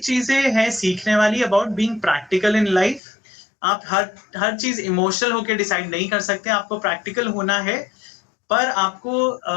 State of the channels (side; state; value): right; drops out; at 3.0 s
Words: हैं सीखने वाली about being practical in life. आप हर चीज इमोशनल होके डिसाइड नहीं कर सकते, आपको प्रैक्टिकल होना है। पर आपको